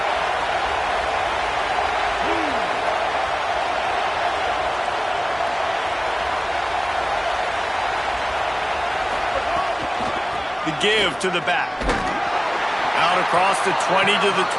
The give to the back. Out across the 20 to the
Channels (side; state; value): both; identical; correlation 1.00